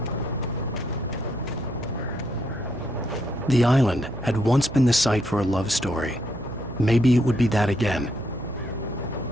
The island had once been the site for a love story. Maybe it would be that again.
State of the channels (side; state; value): right; noise; hum, 13 dB below the sound